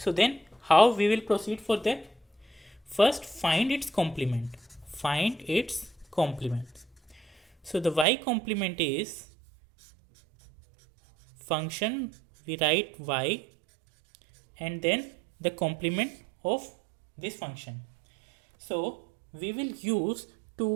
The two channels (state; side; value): drops out; left; at 8.1 s